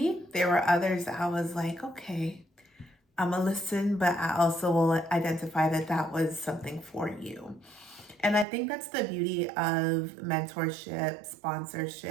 There were others that I was like, okay, I'm gonna listen, but I also will identify that that was something for you. And I think that's the beauty of mentorship,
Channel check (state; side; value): drops out; left; at 8.5 s